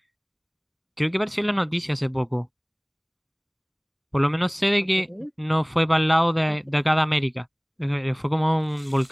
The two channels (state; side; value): identical; both; correlation 1.00